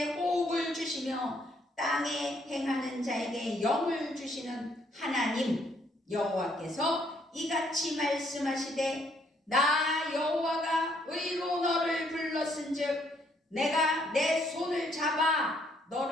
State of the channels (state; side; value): normal; both; correlation 0.69